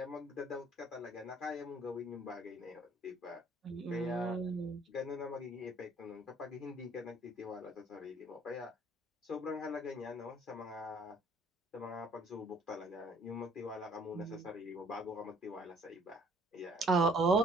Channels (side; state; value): both; normal; correlation 0.58